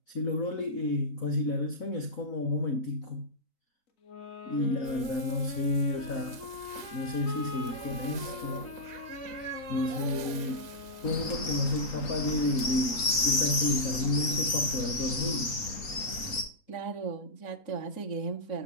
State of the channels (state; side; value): late; right; 3.9 ms